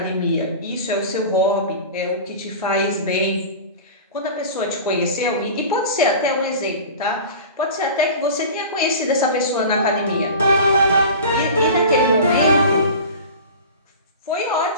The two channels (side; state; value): both; inverted; correlation -0.35